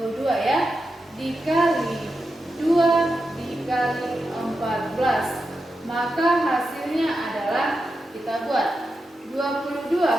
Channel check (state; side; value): normal; both; correlation 0.88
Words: ya, dikali 2 dikali 14. Maka hasilnya adalah, kita buat 22